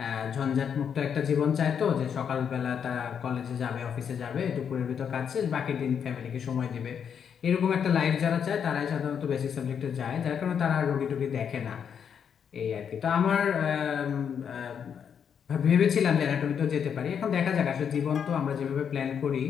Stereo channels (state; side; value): quieter; right; 7.6 dB